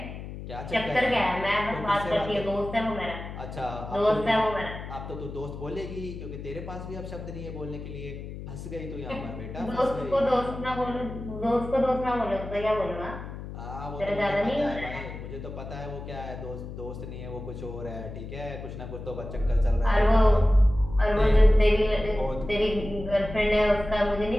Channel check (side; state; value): left; noise; hum, 10 dB below the sound